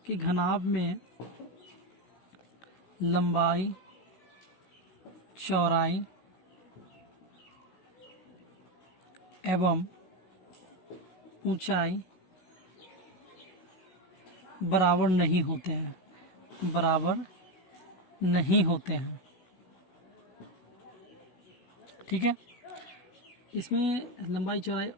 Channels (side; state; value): right; late; 16 ms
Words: कि घनाभ में लंबाई चौड़ाई एवं ऊंचाई बराबर नहीं होते हैं, बराबर नहीं होते हैं, ठीक है। इसमें लंबाई चौड़ाई